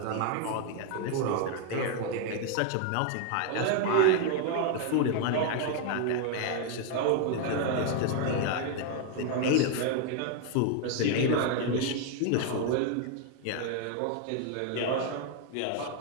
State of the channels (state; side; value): different; both; correlation 0.00